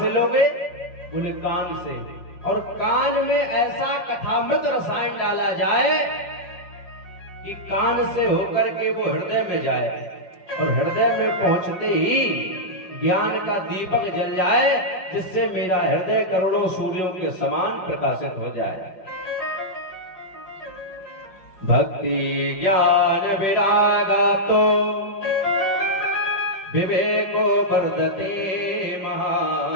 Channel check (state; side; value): late; right; 5.4 ms